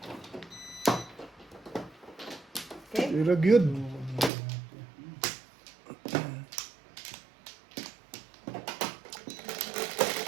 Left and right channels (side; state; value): left; drops out; at 4.3 s